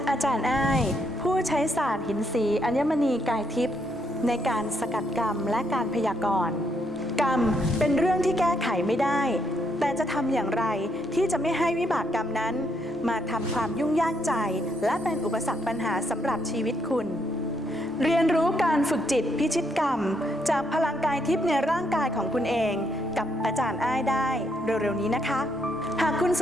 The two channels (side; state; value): both; normal; correlation 0.75